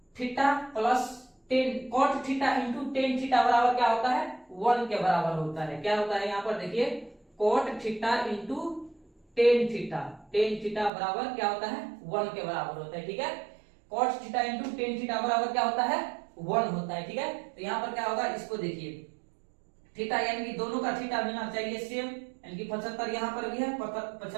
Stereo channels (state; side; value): drops out; left; at 10.9 s